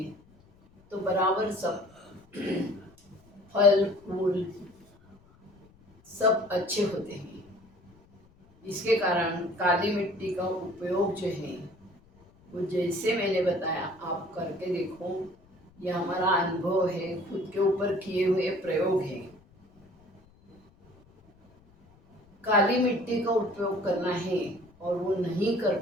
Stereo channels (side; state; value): left; noise; rumble, 29 dB below the sound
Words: तो बराबर सब फल फूल सब अच्छे होते हैं। इसके कारण काली मिट्टी का उपयोग जो है वो जैसे मैंने बताया आप करके देखो। यह हमारा अनुभव है, खुद के ऊपर किए हुए प्रयोग है। काली मिट्टी का उपयोग करना है और वो नहीं कर